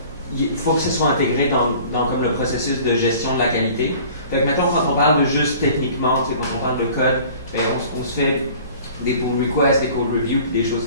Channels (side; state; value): both; inverted; correlation -0.47